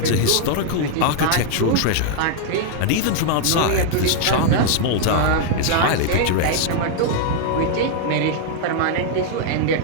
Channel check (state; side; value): different; both; correlation -0.01